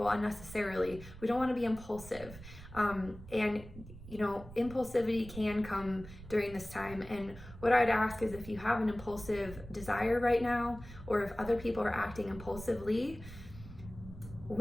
unnecessarily. We don't want to be impulsive. And impulsivity can come during this time. And what I'd ask is, if you have an impulsive desire right now, or if other people are acting impulsively,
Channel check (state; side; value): noise; right; rumble, 15 dB below the sound